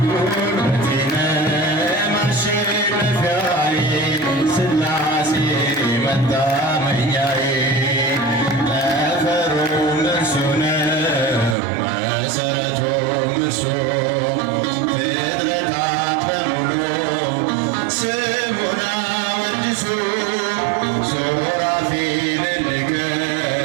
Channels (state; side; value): drops out; left; at 11.6 s